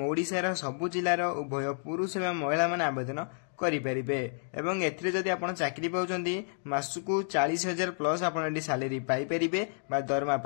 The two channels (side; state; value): right; silent; digital silence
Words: ओडिशार सबु जिलार उभय पुरुष एवं महिला माने आवेदन करें एवं एथिरे जदि आपण चाकरी पाउछंती मासकु 40,000 प्लस आपण सैलरी पाई परिबे बा दरमा